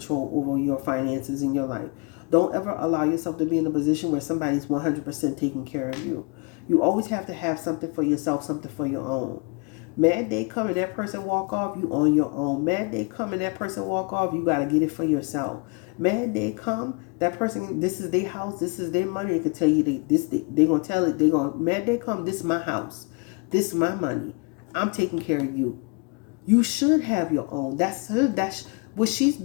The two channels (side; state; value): right; quieter; 33.1 dB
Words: over your finances in your life. Don't ever allow yourself to be in a position where somebody's 100% taking care of you. You always have to have something for yourself, something for your own. Mad day come and that person walk off, you on your own. Mad day come and that person walk off, you got to get it for yourself. Mad day come, that person, this is their house, this is their money. They can tell you they going to tell it, mad day come, this is my house. This is my money. I'm taking care of you. You should have your own. That's what she's